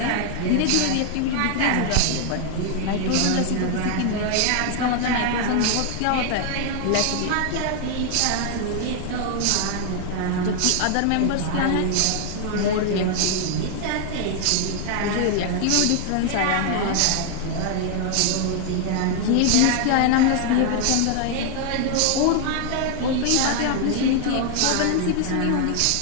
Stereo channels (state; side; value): different; both; correlation 0.00